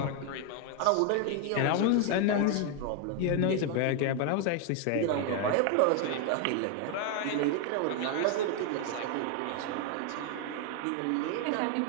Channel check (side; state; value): both; different; correlation 0.01